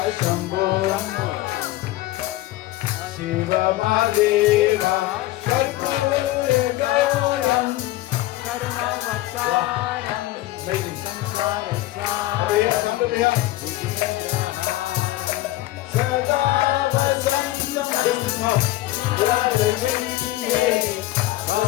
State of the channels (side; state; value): right; quieter; 16.7 dB